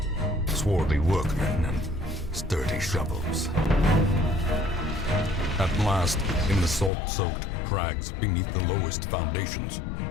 swarthy workmen and sturdy shovels. At last, in the salt-soaked crags beneath the lowest foundations,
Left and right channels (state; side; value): drops out; right; at 6.9 s